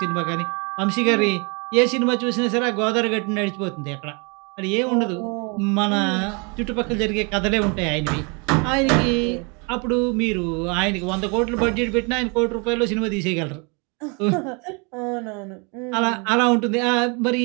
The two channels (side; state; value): left; quieter; 32.5 dB